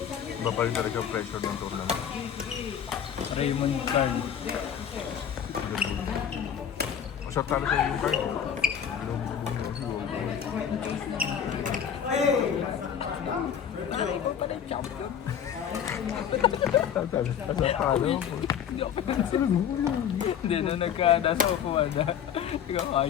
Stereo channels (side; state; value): right; quieter; 8.6 dB